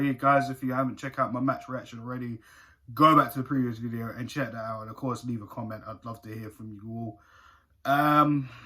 Guys, if you haven't checked out my match reaction already, go back to the previous video and check that out. And of course, leave a comment. I'd love to hear from you all.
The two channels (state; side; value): identical; both; correlation 1.00